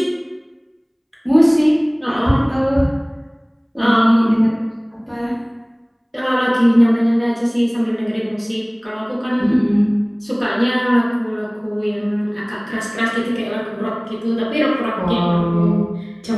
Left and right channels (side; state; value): both; identical; correlation 1.00